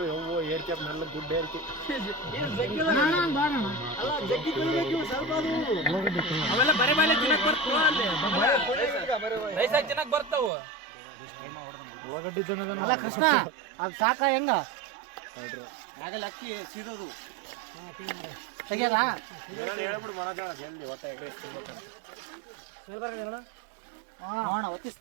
ಯವ್ವೋ ಏರ್ಕೆ ಮೆಲ್ಲ ಗುಡ್ಡ ಏರ್ಕೆ ಅವೆಲ್ಲ ಬರೆ ಬಾಲೆ ತಿನ್ನಕ್ ಬರ್ತಾವ, ರೈಸಾಗಿ ತಿನ್ನಕ್ ಬರ್ತಾವ. ಉಳ್ಳಾಗಡ್ಡಿ ಅಲ್ಲ ಕೃಷ್ಣ ಅದು ಸಾಕ ಹೆಂಗ ಆಗಲ್ಲ ಅಕ್ಕಿ ಸಿಡೋದು ತೆಗಿಯಲ್ಲ ಹೇಳ್ಬಿಡು ಮನೋಜ ಜಲ್ದಿ ಹೊಟ್ಟೆ ಒತ್ತಿ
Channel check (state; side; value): drops out; left; at 10.5 s